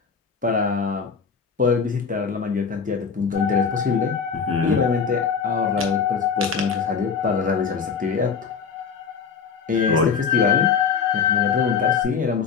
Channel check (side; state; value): right; quieter; 6.0 dB